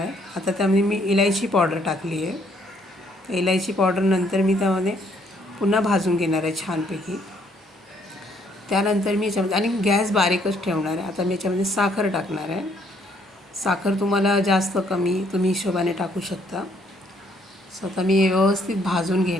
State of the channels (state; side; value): normal; both; correlation 0.67